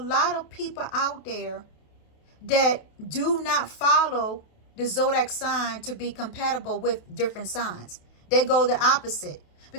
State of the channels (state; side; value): late; right; 28 ms